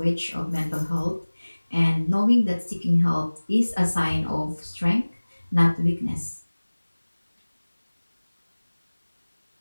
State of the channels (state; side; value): inverted; both; correlation -1.00